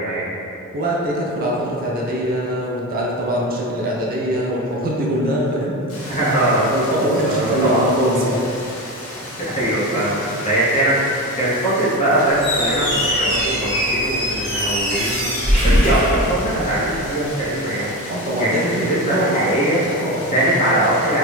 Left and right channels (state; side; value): normal; both; correlation 0.22